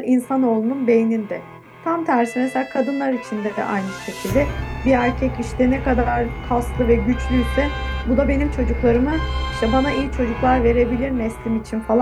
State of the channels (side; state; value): both; identical; correlation 1.00